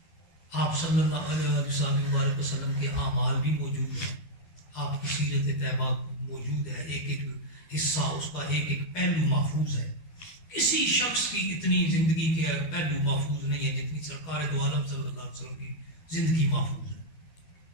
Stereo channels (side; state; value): right; late; 12 ms